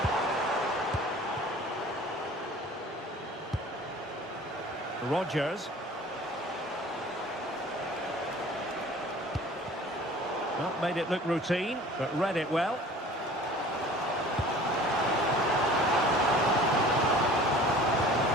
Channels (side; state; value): both; normal; correlation 0.46